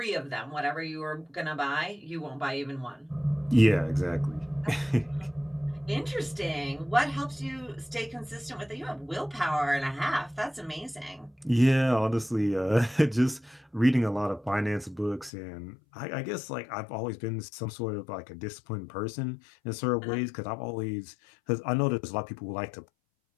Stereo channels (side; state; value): right; drops out; at 15.3 s